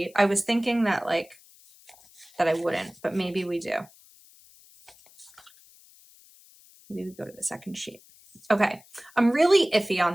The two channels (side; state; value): left; noise; hiss, 26 dB below the sound